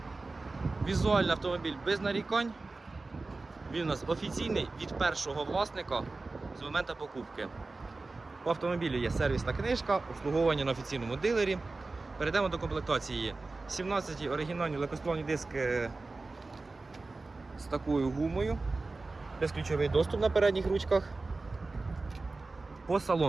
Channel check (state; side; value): quieter; left; 3.5 dB